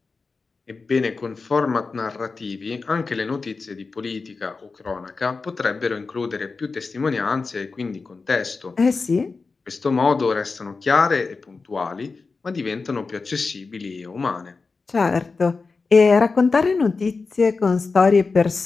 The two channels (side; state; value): right; quieter; 4.3 dB